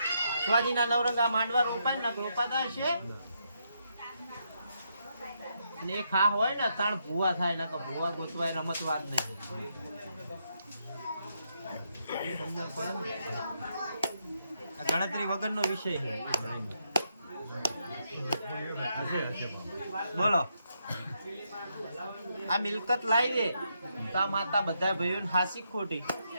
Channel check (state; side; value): inverted; both; correlation -0.79